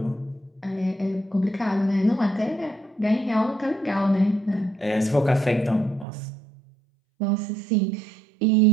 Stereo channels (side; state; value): left; drops out; at 6.1 s